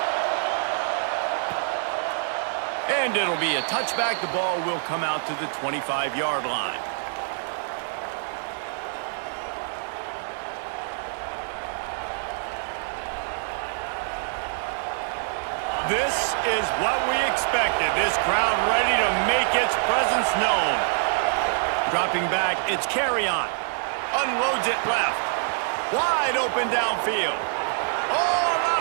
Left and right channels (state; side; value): silent; left; digital silence